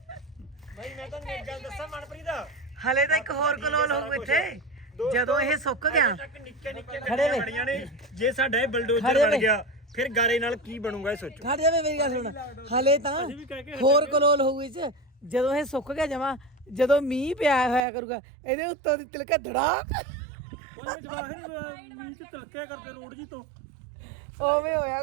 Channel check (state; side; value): drops out; left; at 17.8 s